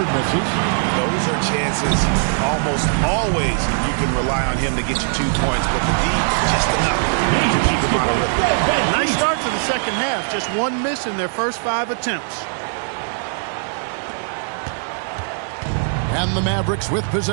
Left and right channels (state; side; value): silent; left; 66 dB below the other